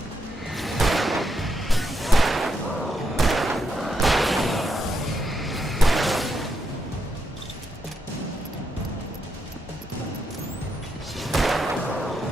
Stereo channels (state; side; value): normal; both; correlation 0.81